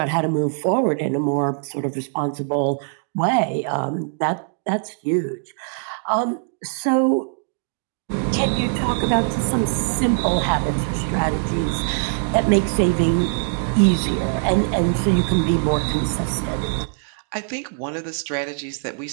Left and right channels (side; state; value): left; silent; digital silence